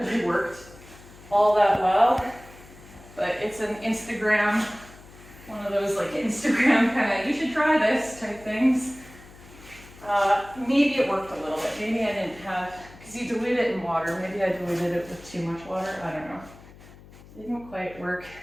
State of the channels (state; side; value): noise; left; hum, 21 dB below the sound